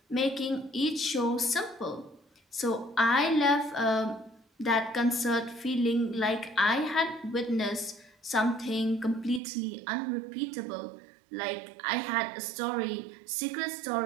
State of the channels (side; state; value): left; drops out; at 9.4 s